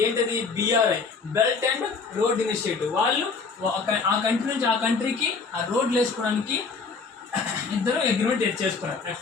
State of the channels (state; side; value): quieter; right; 4.7 dB